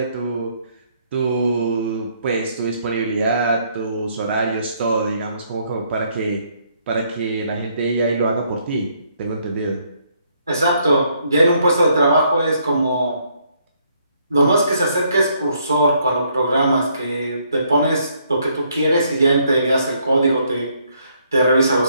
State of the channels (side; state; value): both; inverted; correlation -0.70